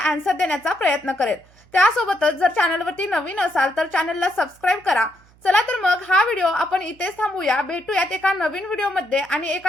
आन्सर देण्याचा प्रयत्न करेल. त्यासोबतच जर चॅनलवरती नवीन असाल तर चॅनलला सबस्क्राईब करा. चला तर मग हा व्हिडिओ आपण इथेच थांबूया. भेटूयात एका नवीन व्हिडिओमध्ये आणि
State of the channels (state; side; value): noise; right; hum, 29 dB below the sound